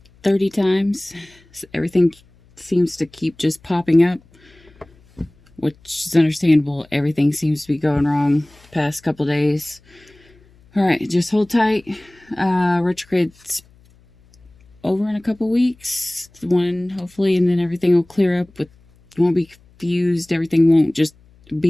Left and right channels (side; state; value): left; noise; hum, 30 dB below the sound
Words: 30 times. So everything seems to keep just popping up, which is understandable. Everything seems to be going wrong the past couple days. Alright, just hold tight. Retrograde's over in a couple weeks, hopefully, and then everything will clear up. You won't be confused, everything won't just